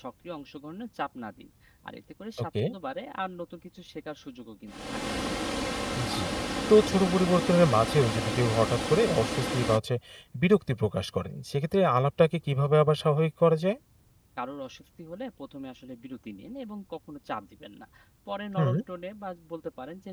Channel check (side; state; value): both; identical; correlation 1.00